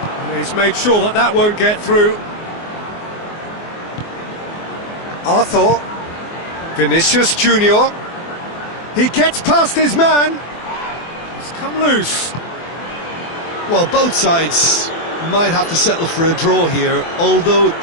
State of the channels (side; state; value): right; late; 24 ms